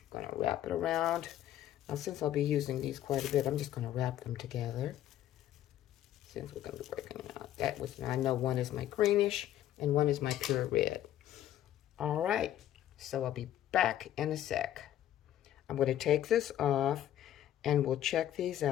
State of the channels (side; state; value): right; quieter; 12.2 dB